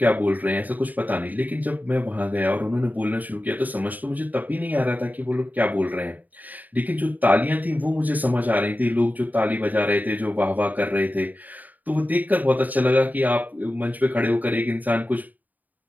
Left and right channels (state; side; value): late; left; 0.081 ms